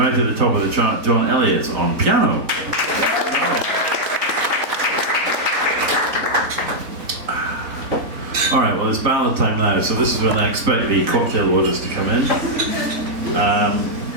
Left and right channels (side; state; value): left; late; 4.0 ms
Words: at the top of the chart, John Elliott on piano. All right, well, it's ballad time now, so this is when I expect the cocktail orders to come in.